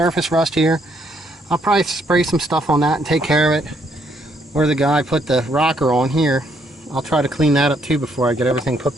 rust here. I'll probably spray some stuff on that and take care of it. Where the guy put the rocker on here, I'll try to clean that up too before I get everything put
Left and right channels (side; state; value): both; normal; correlation 0.71